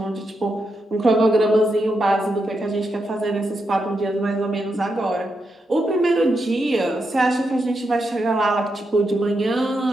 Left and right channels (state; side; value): normal; both; correlation 0.84